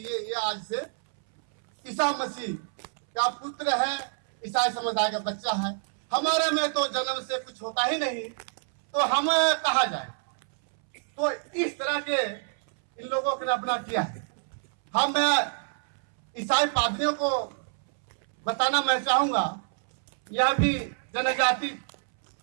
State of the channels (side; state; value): left; silent; 60 dB below the other